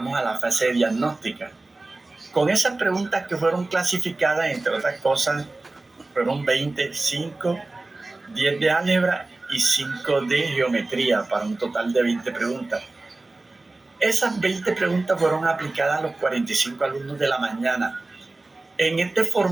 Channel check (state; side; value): quieter; left; 3.1 dB